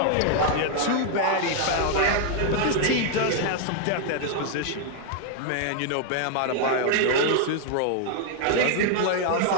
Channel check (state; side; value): different; both; correlation 0.00